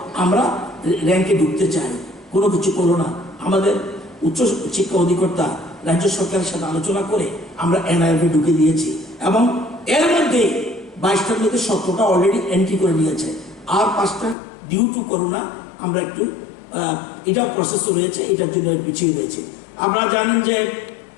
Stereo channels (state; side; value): drops out; right; at 14.4 s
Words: আমরা র্যাঙ্কে ঢুকতে চাই, কোনো কিছু করো না। আমাদের উচ্চ শিক্ষা অধিকর্তা রাজ্য সরকারের সাথে আলোচনা করে আমরা এনআরএফ এ ঢুকে দিয়েছি এবং এর মধ্যে 22টার মধ্যে 17টা অলরেডি এন্ট্রি করে নিয়েছে, আর 5টা ডিউ টু করোনা আমরা একটু এটা প্রসেস রয়েছে, এটার জন্য পিছিয়ে রয়েছে। আপনারা জানেন যে